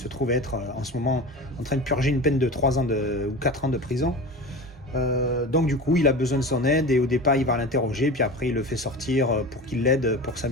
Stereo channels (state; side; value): normal; both; correlation 0.31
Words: trouve être en ce moment en train de purger une peine de 3 ans ou 4 ans de prison. Donc du coup il a besoin de son aide et au départ il va l'interroger puis après il le fait sortir pour qu'il l'aide pour sa